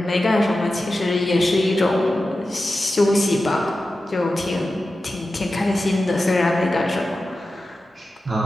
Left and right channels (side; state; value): both; normal; correlation 0.93